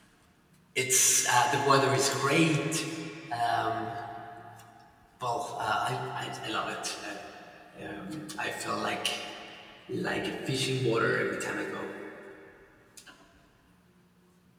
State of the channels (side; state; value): both; identical; correlation 1.00